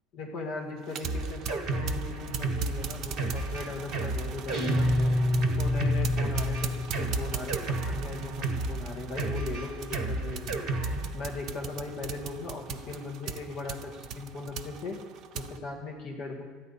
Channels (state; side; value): normal; both; correlation 0.62